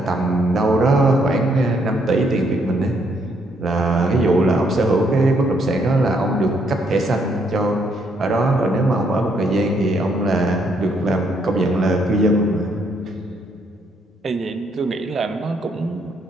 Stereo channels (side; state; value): both; normal; correlation 0.72